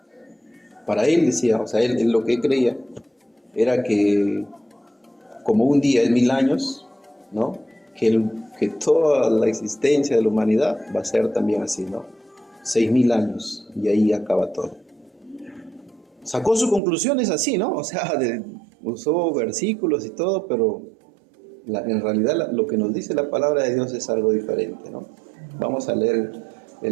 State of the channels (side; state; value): left; drops out; at 16.8 s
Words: para él decía, o sea, él lo que creía era que como un día es 1000 años, ¿no? Que toda la existencia de la humanidad va a ser también así, ¿no? 6000 años y ahí acaba todo. Sacó sus conclusiones así, ¿no? O sea, usó versículos y todo, pero en realidad lo que nos dice la palabra de Dios es algo diferente, ¿no? Vamos a leer